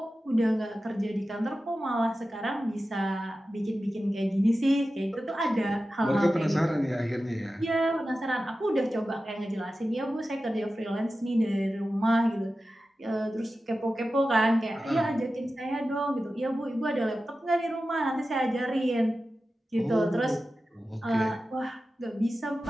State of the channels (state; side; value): normal; both; correlation 0.93